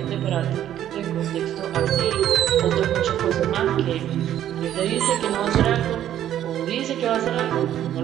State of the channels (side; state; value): left; quieter; 11.4 dB